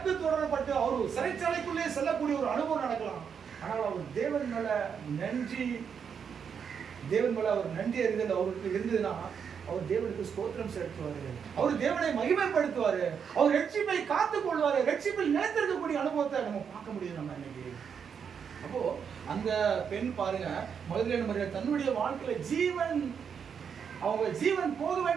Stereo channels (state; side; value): quieter; left; 7.0 dB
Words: தொடரப்பட்டு அவர் சிறைச்சாலைக்குள்ளே செல்லக்கூடிய ஒரு அனுபவம் நடக்கலாம். ஆனால் அவர் தேவன் மேல அவர் நன்றி அறிதல் அவருக்கு இருந்ததுன்னா அவர் தேவனுக்கு ஸ்தோத்திரம் செலுத்துவாரு, அவர் தேவனை மகிமைப்படுத்துவாரு, அவர் ரட்சிப்பை காத்துக் கொள்வாரு, ரட்சிப்பில் நிலைத்திருக்கக்கூடிய அனுபவத்தை நம்ம பார்க்க முடியும் நம்ம இன்னைக்கு. அப்போ அந்த பெண் பாருங்க, மதுரை மரியாதை தன்னுடைய வாழ்க்கையில அவங்க ஜீவன் போக